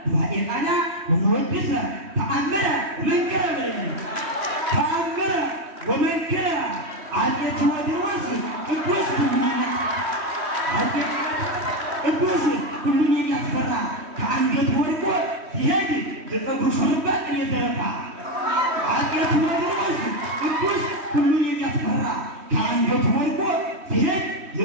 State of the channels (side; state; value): left; late; 3.1 ms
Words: በዋዕየ ቃና ወወድሰ ተአምረ ወመንከረ አፄ ቴዎድሮስ ቅዱስ ሁሉን የሚያስፈራ ከአንገት ወድቆ ሲሄድ የፀጉሩ ሹሩባ ቅኔ የተረፋ አፄ ቴዎድሮስ ቅዱስ ሁሉን የሚያስፈራ ከአንገት ወድቆ ሲሄድ